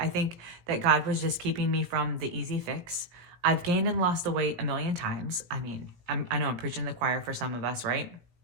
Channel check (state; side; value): late; left; 17 ms